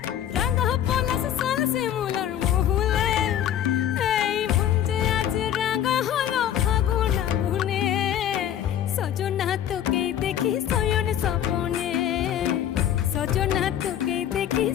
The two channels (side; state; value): right; quieter; 10.6 dB